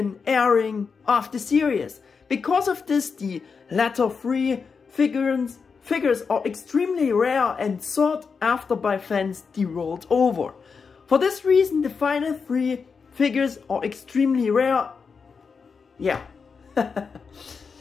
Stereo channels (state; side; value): quieter; right; 5.4 dB